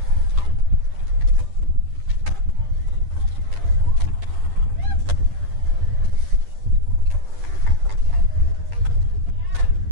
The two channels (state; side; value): late; left; 10 ms